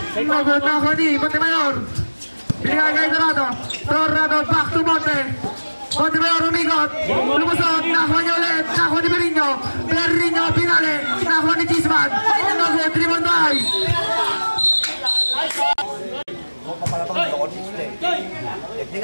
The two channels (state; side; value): inverted; both; correlation -1.00